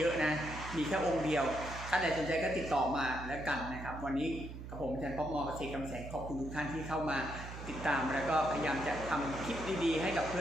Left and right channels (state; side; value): noise; right; hum, 10 dB below the sound